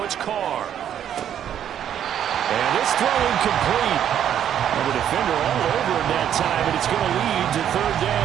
it's Carr. And this throw incomplete. And the defender all over him that time, and it's going to lead to 3rd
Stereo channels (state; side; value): quieter; left; 9.9 dB